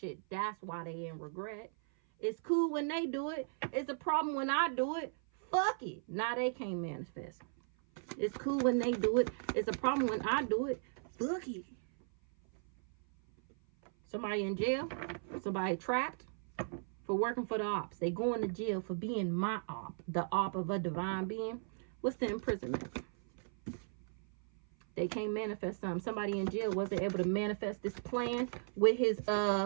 That's why they in regret. It's cool when they do it. It's a problem when I do it. Fuck it. Now they can't manifest. It's cool when they do it. It's a problem when I do it. Fuck it. Somebody in jail. Somebody trapped for working for the ops. They going to jail for being my op. The op of a divine being. What's the imprisonment? They can't manifest something. Somebody in jail wasn't able to manifest this plan with his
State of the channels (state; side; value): silent; left; 53 dB below the other